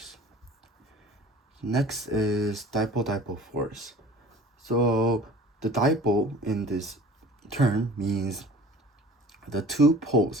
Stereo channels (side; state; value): both; normal; correlation 0.45